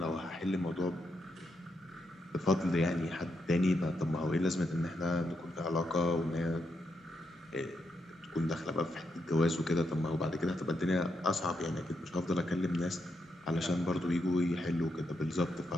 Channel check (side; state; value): both; normal; correlation 0.81